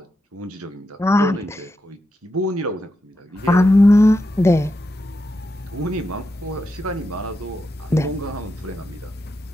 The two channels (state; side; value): normal; both; correlation 0.86